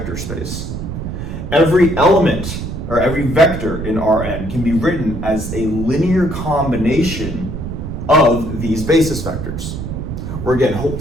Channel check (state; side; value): noise; right; rumble, 6 dB below the sound